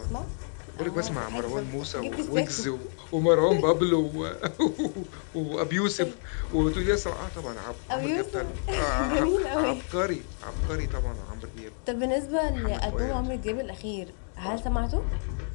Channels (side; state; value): right; silent; 55 dB below the other